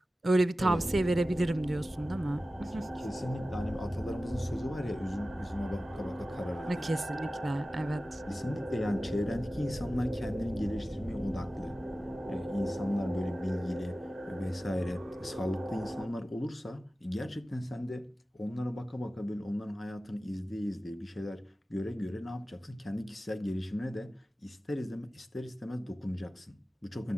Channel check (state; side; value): normal; both; correlation 0.95